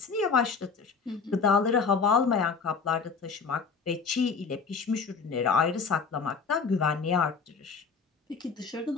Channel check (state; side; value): quieter; right; 5.3 dB